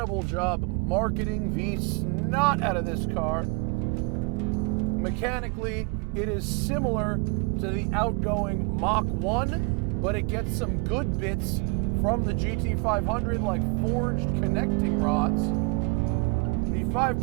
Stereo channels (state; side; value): quieter; left; 31.4 dB